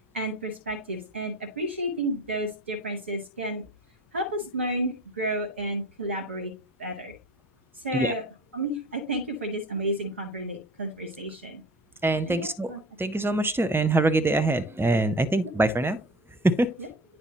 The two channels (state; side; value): normal; both; correlation 0.39